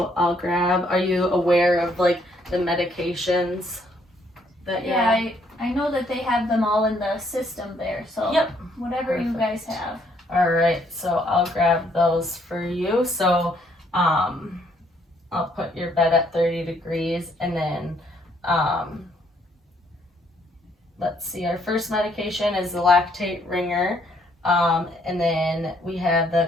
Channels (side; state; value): both; normal; correlation 0.68